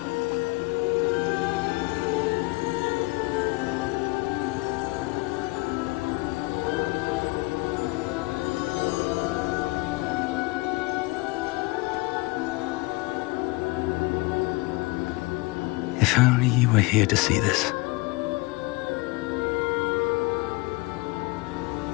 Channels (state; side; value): quieter; right; 24.2 dB